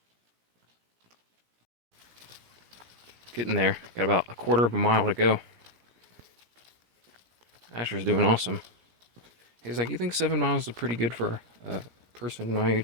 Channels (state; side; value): late; left; 17 ms